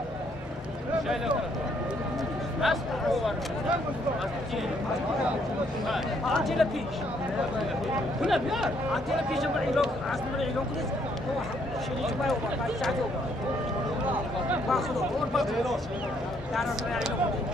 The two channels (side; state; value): both; normal; correlation 0.69